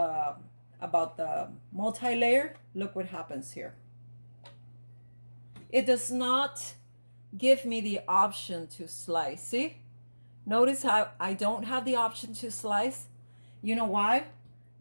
multi-layer? Look what happens here. It does not give me the option to slice. See? Notice how I don't have the option to slice. You know why?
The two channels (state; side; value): inverted; both; correlation -1.00